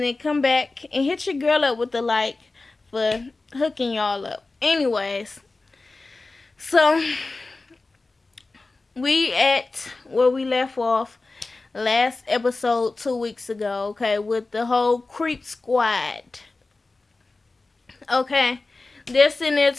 then come back and hit your girl up with the like for hooking y'all up. Anyways, so we at where we left off last episode 2 weeks ago, okay, with the whole creep squad. Okay. They're sitting there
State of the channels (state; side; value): quieter; right; 3.4 dB